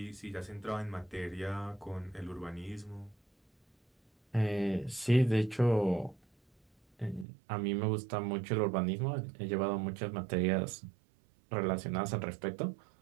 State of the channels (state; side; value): drops out; left; at 7.2 s